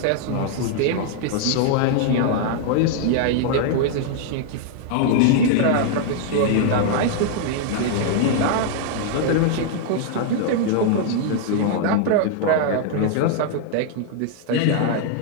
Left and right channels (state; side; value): different; both; correlation 0.00